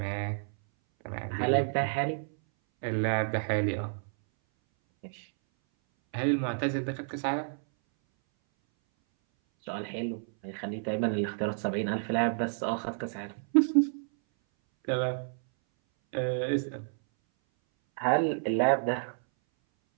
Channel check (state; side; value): silent; left; 58 dB below the other